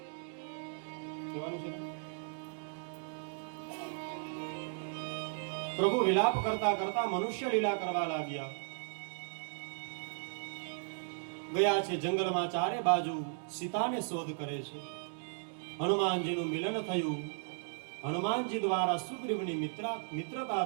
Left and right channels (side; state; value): left; silent; digital silence